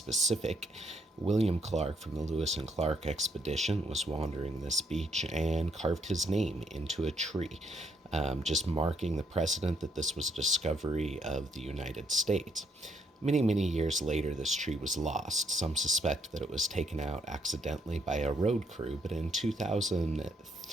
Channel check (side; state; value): both; normal; correlation 0.72